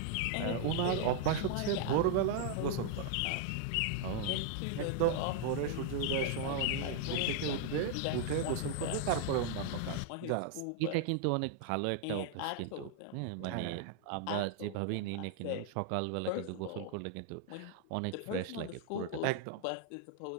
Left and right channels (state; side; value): different; both; correlation 0.00